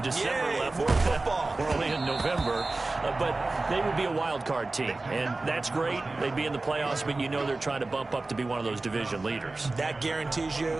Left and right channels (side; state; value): left; quieter; 3.2 dB